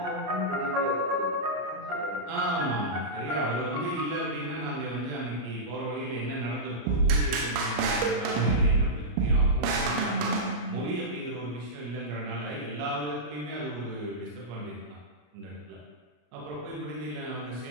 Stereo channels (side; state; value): left; late; 34 ms